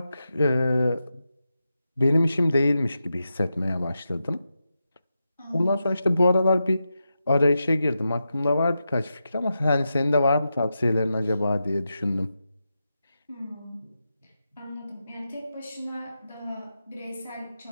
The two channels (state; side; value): inverted; both; correlation -0.89